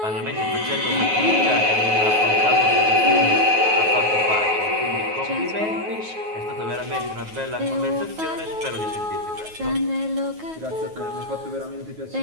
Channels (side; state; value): left; late; 9.4 ms